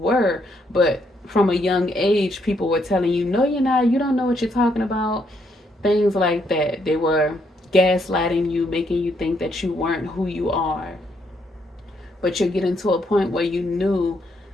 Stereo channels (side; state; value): both; normal; correlation 0.74